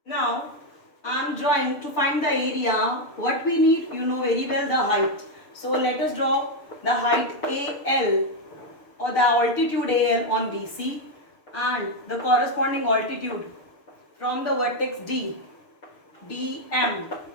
Now I am drawing to find the area. What we need, you know very well, the height. So let us draw the height AL or the altitude AL on BC and the corresponding altitude from the vertex D, DM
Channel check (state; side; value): late; right; 6.7 ms